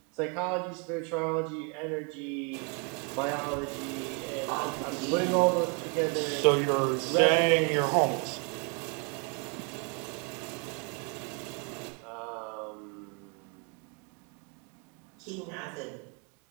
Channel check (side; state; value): left; quieter; 34.8 dB